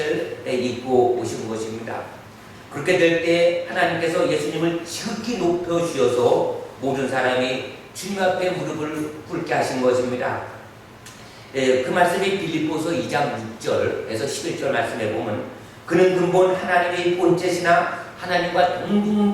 입고 오신 것입니다. 그렇게 될 때 하나님께서 예수님을 지극히 높여주셔서 모든 사람이 주님 앞에 무릎을 꿇게 하신 것입니다. 그 말씀이 빌립보서 2장 6절에서 11절 말씀에 보면 그는 근본 하나님의 본체시나 하나님과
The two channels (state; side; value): identical; both; correlation 1.00